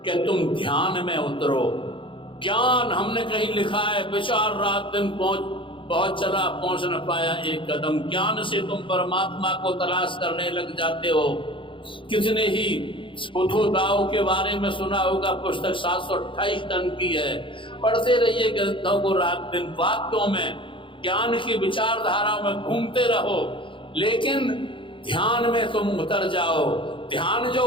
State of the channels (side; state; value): right; late; 0.25 ms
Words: कि तुम ध्यान में उतरो। ज्ञान, हमने कहीं लिखा है, विचार रात दिन बहुत चला, पहुंच न पाया एक कदम। ज्ञान से तुम परमात्मा को तलाश करने लग जाते हो। कितने ही बुद्धोदाओं के बारे में सुना होगा, पुस्तक 728 टन की है, पढ़ते रहिए ग्रंथों को रात दिन, वाक्यों में, ज्ञान की विचारधारा में घूमते रहो, लेकिन ध्यान में तुम उतर जाओ। ध्यान जो